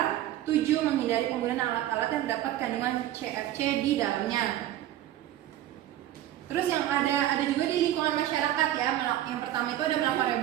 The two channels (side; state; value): left; quieter; 13.1 dB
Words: 7, menghindari penggunaan alat-alat yang terdapat kandungan CFC di dalamnya. Terus yang ada juga di lingkungan masyarakat ya. Yang pertama itu ada melakukan